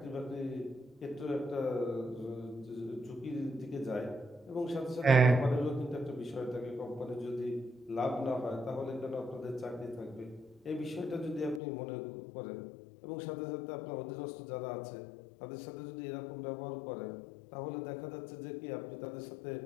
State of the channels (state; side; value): drops out; right; at 11.6 s